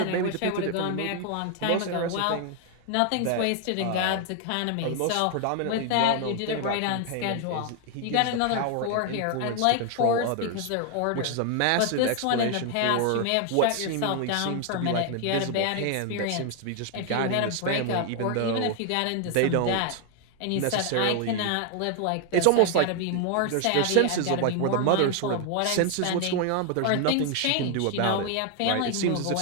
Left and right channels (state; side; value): different; both; correlation 0.00